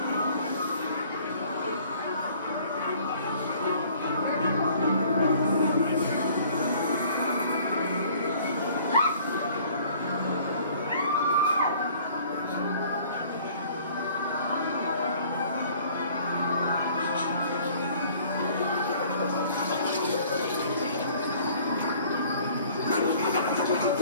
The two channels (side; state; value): both; inverted; correlation -0.54